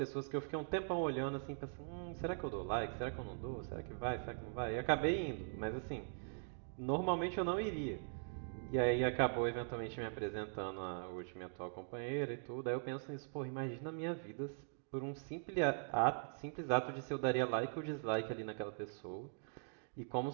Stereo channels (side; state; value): left; silent; digital silence